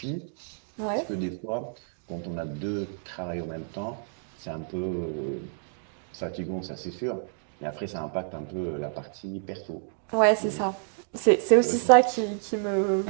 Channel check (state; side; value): silent; left; 59 dB below the other